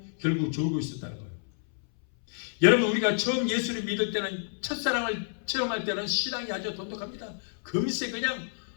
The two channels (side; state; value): right; silent; 59 dB below the other